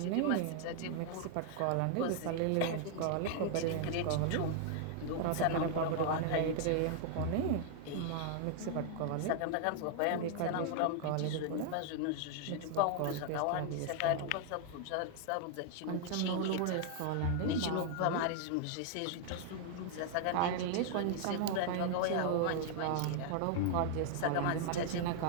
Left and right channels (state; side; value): different; both; correlation 0.00